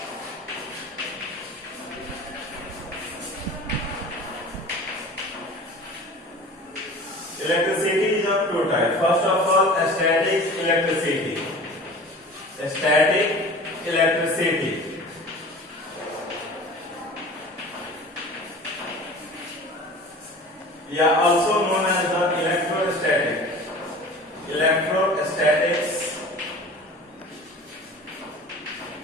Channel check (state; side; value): normal; both; correlation 0.40